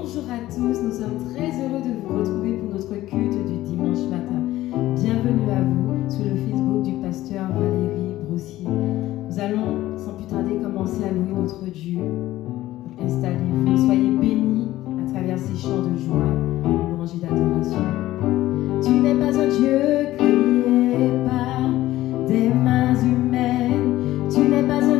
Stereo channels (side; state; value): right; quieter; 15.5 dB